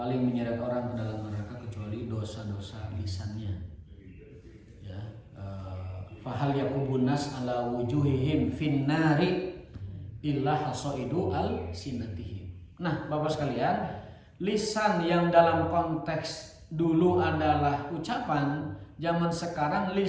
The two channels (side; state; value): both; identical; correlation 1.00